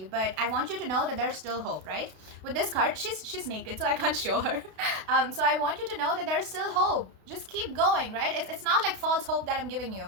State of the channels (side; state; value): left; late; 32 ms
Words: But I want you to know that there's still hope, right? With this card, she's naked, so I can't show her. So I want you to know that there's still hope. Just keep going, right? It's not like false hope that I'm giving you.